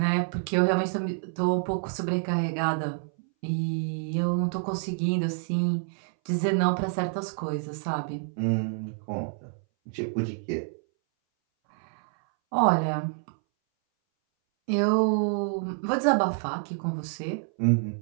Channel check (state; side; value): silent; left; 60 dB below the other